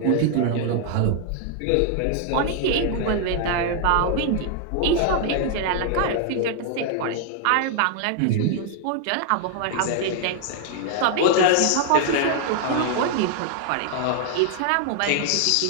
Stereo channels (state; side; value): different; both; correlation 0.00